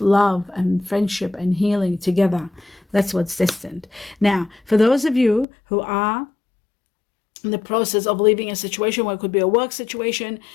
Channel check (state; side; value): drops out; right; at 5.5 s